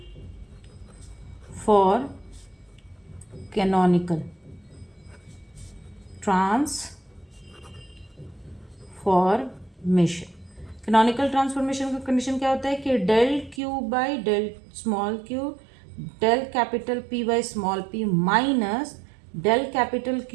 for canonical transformation, canonical transformation का कंडीशन क्या होता है कि del Q by del small Q, del capital P by small P minus del capital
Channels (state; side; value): drops out; left; at 13.6 s